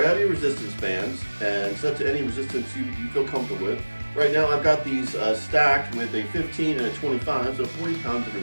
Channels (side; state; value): both; inverted; correlation -1.00